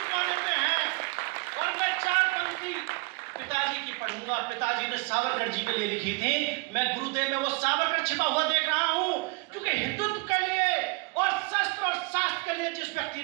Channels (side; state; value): left; quieter; 28.7 dB